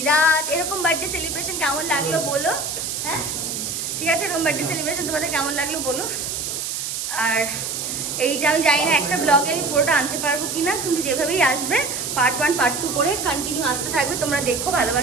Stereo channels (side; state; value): right; noise; hiss, 3 dB below the sound